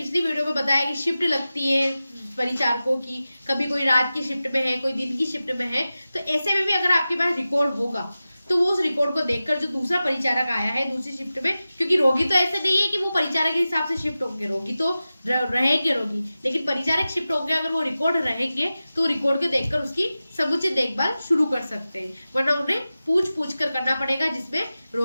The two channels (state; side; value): inverted; both; correlation -0.95